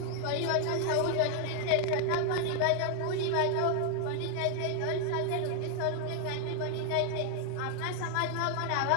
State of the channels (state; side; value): different; both; correlation 0.00